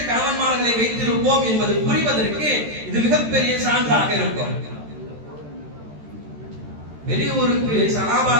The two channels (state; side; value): late; left; 13 ms